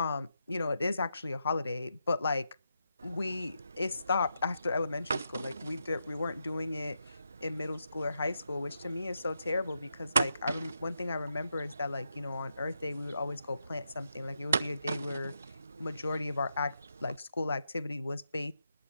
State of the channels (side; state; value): both; inverted; correlation -0.84